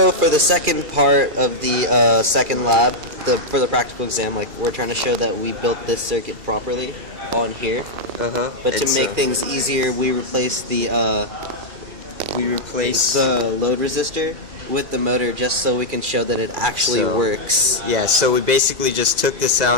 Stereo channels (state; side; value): late; left; 2.4 ms